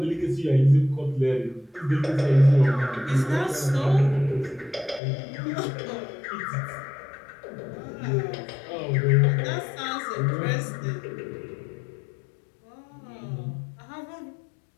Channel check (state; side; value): drops out; right; at 5.0 s